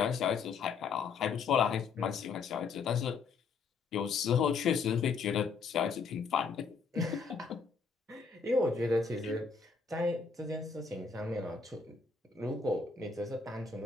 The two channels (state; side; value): quieter; right; 5.1 dB